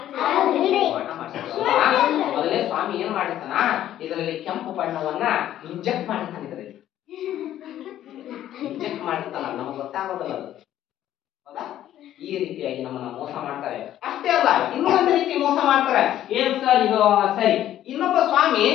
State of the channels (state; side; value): quieter; right; 12.2 dB